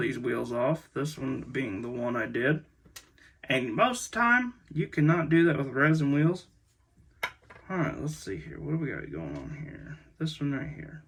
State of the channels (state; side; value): identical; both; correlation 1.00